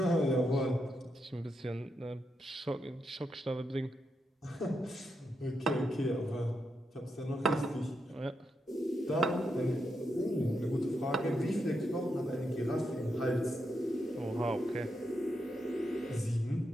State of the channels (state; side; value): normal; both; correlation 0.83